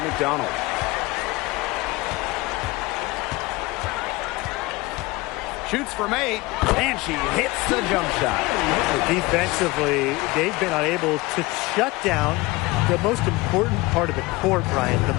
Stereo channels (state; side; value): quieter; right; 21.8 dB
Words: McDonald. Shoots from 8, and she hits the jump shot. Defensively, they've been unable to shut down the most important part of the court, Brian,